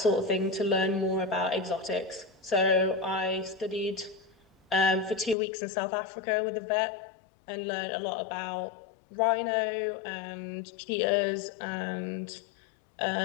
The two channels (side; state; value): right; drops out; at 5.4 s